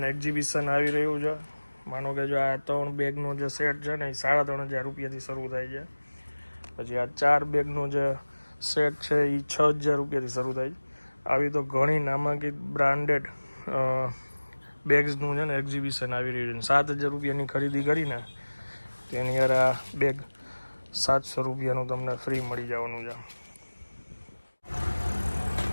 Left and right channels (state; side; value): inverted; both; correlation -1.00